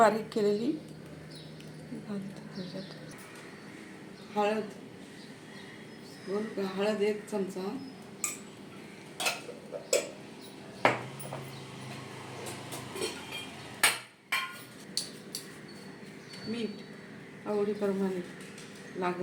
केलेली घालते त्याच्यात. हळद 1 चमचा, मीठ आवडीप्रमाणे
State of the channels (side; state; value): both; identical; correlation 1.00